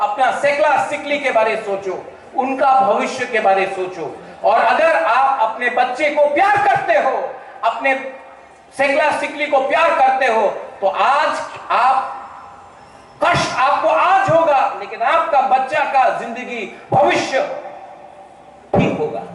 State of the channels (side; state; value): both; identical; correlation 1.00